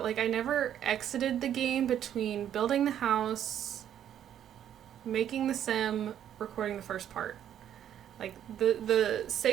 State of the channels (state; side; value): quieter; left; 10.2 dB